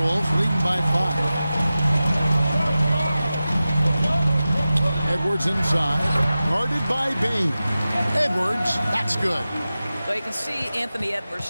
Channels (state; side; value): inverted; both; correlation -0.95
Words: leading by 5. Edwards inside, guarded by Bain. Edwards, that's good. So you can see Anthony Edwards